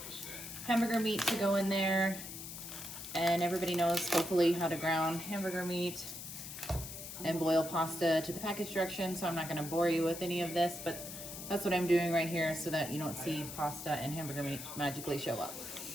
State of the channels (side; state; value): left; noise; hiss, 10 dB below the sound